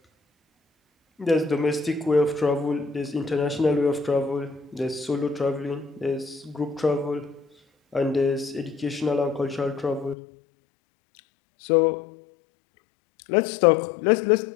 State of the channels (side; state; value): right; drops out; at 10.2 s